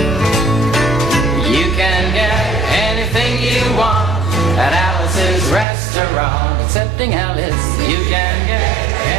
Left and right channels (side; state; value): left; drops out; at 5.7 s